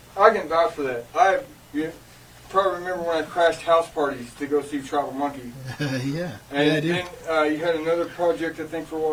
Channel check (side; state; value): both; identical; correlation 1.00